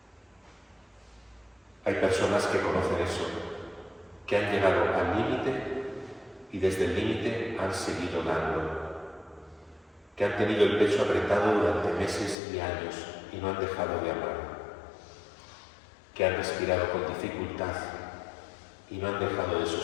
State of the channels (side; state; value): right; drops out; at 12.4 s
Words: Hay personas que conocen eso, que han llegado al límite y desde el límite han seguido dando, que han tenido el pecho apretado durante meses y años y no han dejado de amar, que han respirado con dificultad y no han dejado de